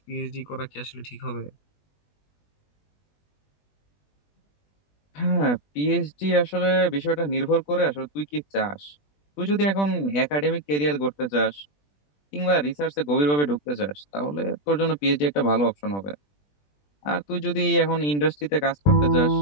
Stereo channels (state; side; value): late; right; 20 ms